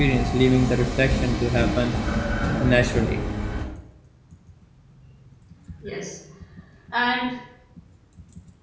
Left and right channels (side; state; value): both; identical; correlation 1.00